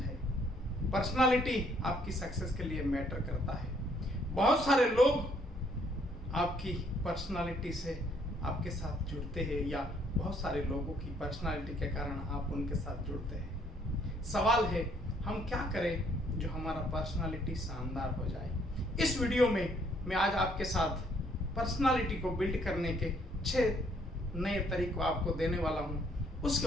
पर्सनालिटी आपकी सक्सेस के लिए मैटर करता है। बहुत सारे लोग आपकी पर्सनालिटी से आपके साथ जुड़ते हैं, या बहुत सारे लोगों की पर्सनालिटी के कारण आप उनके साथ जुड़ते हैं। सवाल है, हम क्या करें जो हमारा पर्सनालिटी शानदार हो जाए। इस वीडियो में मैं आज आपके साथ पर्सनालिटी को बिल्ड करने के 6 नए तरीकों आपको देने वाला हूँ। उसके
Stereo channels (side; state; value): both; normal; correlation 0.66